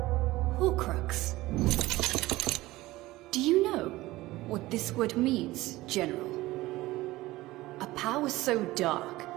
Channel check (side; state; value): left; quieter; 18.3 dB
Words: Horcrux. Do you know what this word means, General? A power so dark